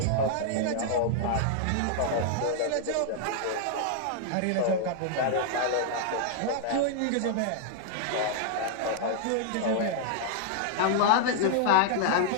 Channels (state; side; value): different; both; correlation -0.01